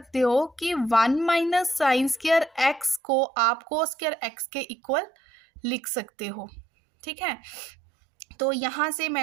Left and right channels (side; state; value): left; drops out; at 3.0 s